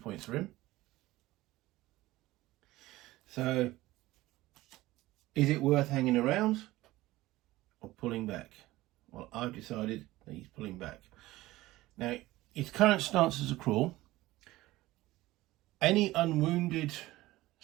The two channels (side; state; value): left; quieter; 17.8 dB